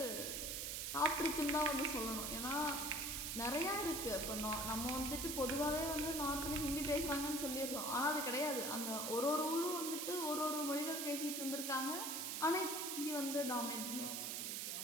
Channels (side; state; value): right; noise; hiss, 2 dB below the sound